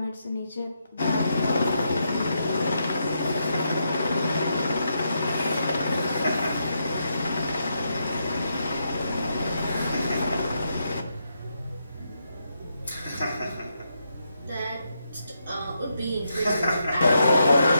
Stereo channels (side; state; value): both; inverted; correlation -0.81